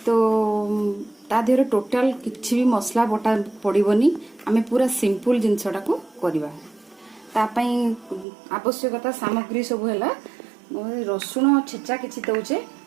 तो ता देहरे टोटाल किसी भी मसला बटा पड़ोनी आम पूरा सिंपल जिनसटा को करवा। आवश्यकता सामग्री सब है रसुण छेचा किसी दौचे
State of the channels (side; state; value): left; drops out; at 8.2 s